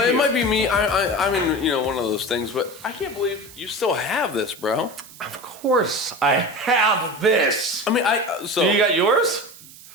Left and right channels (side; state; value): right; noise; hiss, 19 dB below the sound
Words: it you. might be me. I mean, you know, one of those things, but I can't believe you still have this, bro. Of course, I have this. I mean, so You got yours?